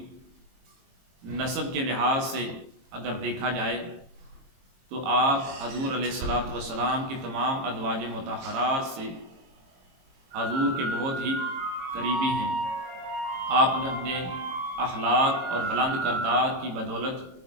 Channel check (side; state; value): left; late; 22 ms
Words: نسب کے لحاظ سے اگر دیکھا جائے تو آپ حضور علیہ الصلوۃ والسلام کی تمام ازواج مطہرات سے حضور کے بہت ہی قریبی ہیں۔ آپ نے اپنے اخلاق اور بلند کردار کی بدولت